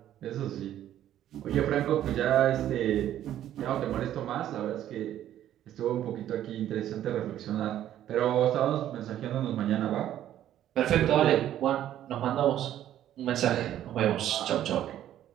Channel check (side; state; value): left; quieter; 11.8 dB